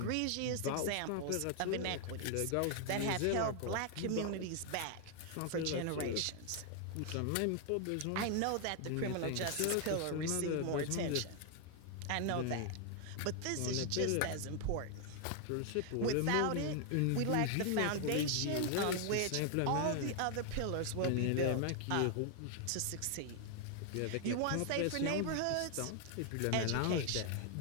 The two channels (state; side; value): different; both; correlation 0.00